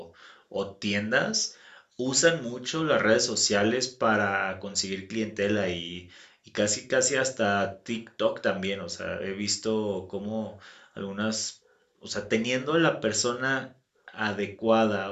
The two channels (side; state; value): both; identical; correlation 1.00